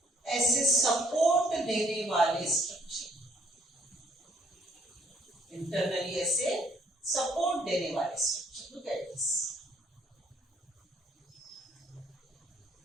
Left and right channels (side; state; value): both; normal; correlation 0.64